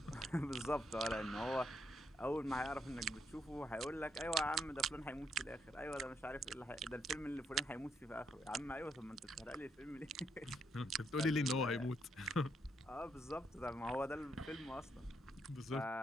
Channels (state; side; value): normal; both; correlation 0.76